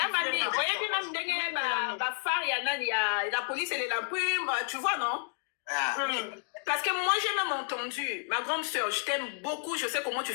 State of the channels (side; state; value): right; silent; 57 dB below the other